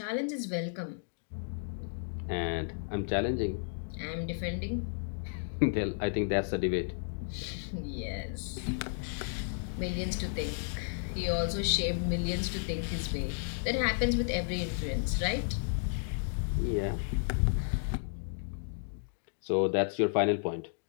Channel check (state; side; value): silent; right; digital silence